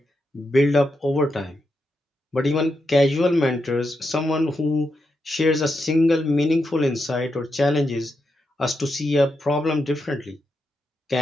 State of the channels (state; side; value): normal; both; correlation 0.85